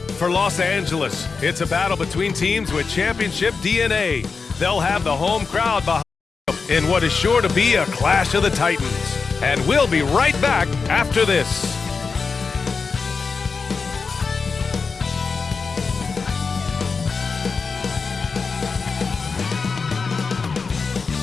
for Los Angeles, it's a battle between teams with championship DNA. They'll have the home crowd behind them in what is sure to be a clash of the Titans. And we'll be right back after this.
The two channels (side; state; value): right; quieter; 4.8 dB